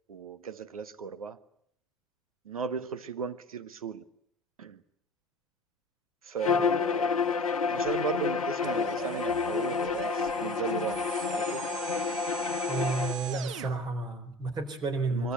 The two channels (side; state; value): both; normal; correlation 0.40